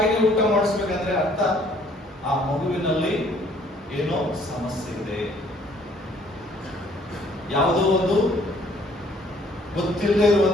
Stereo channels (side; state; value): both; normal; correlation 0.61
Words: ಊಟ ಮಾಡಿಸ್ಬೇಕಂದ್ರೆ ಅರ್ಥ ಆ ಮಗುವಿನಲ್ಲಿ ಏನೋ ಸಮಸ್ಯೆ ಇದೆ, ಯಾವುದೋ ಒಂದು ಗೊತ್ತಿಲ್ಲದೆ